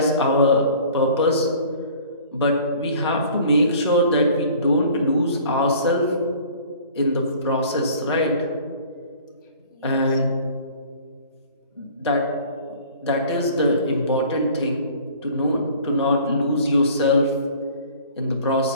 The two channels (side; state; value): both; inverted; correlation -0.49